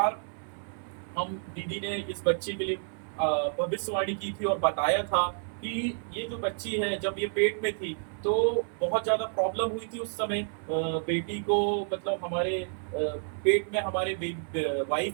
हम दीदी ने इस बच्ची के लिए भविष्यवाणी की थी और बताया था कि ये जो बच्ची है, जब ये पेट में थी तो बहुत ज़्यादा प्रॉब्लम हुई थी उस समय। बेटी को, मतलब हमारे पेट में हमारे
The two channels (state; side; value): silent; left; 58 dB below the other